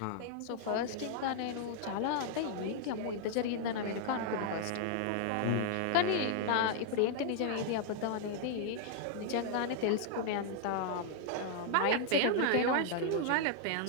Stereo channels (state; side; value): different; both; correlation 0.00